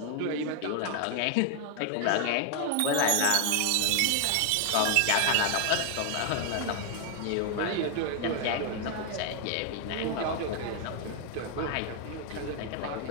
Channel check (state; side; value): different; both; correlation 0.00